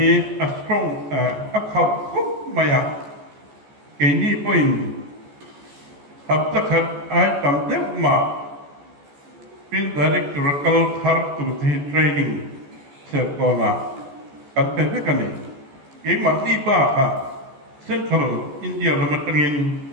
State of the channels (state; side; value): late; left; 14 ms